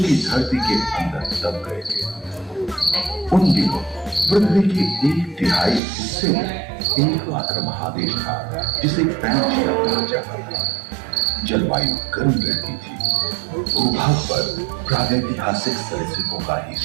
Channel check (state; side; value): drops out; left; at 5.8 s